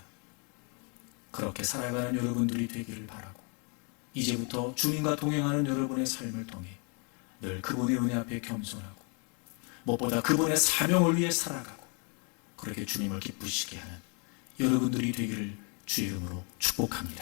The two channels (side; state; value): right; quieter; 36.1 dB